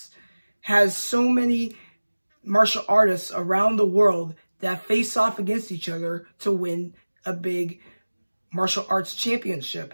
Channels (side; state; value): both; inverted; correlation -1.00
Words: has so many martial artists around the world that face off against each other to win a big martial arts championship.